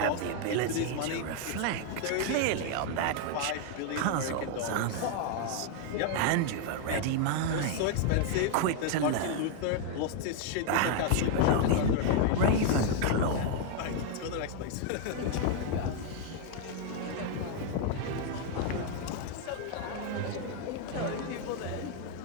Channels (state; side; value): different; both; correlation 0.00